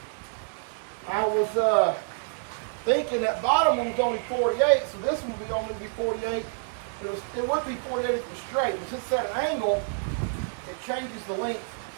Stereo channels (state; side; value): silent; left; 60 dB below the other